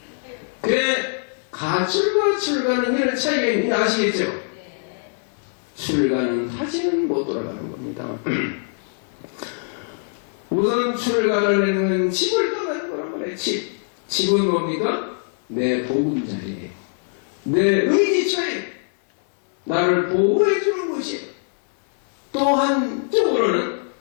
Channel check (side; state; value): right; silent; 64 dB below the other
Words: 그래, 가출과 출가는 이런 차이가 있는지 아시겠죠? 출가는 다시는 못 돌아가는 겁니다. 우선 출가를 하는 건 집을 떠나는 거란 말이에요. 집은 뭡니까? 내 보금자리예요. 내 의지처예요. 나를 보호해주는 곳이에요. 또 한쪽으로는